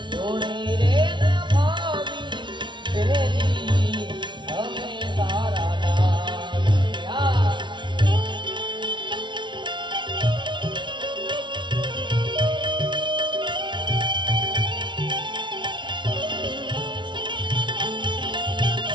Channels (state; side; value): late; left; 0.23 ms